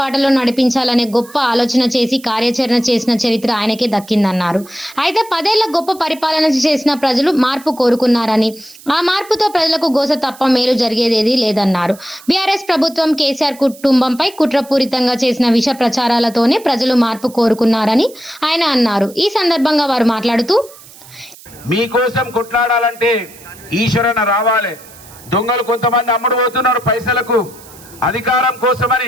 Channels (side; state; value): right; noise; hiss, 21 dB below the sound